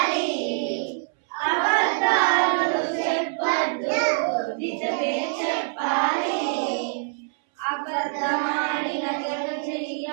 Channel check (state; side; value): silent; left; 62 dB below the other